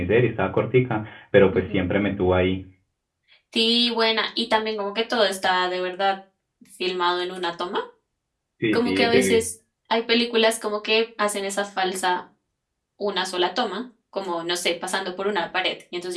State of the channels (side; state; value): both; identical; correlation 1.00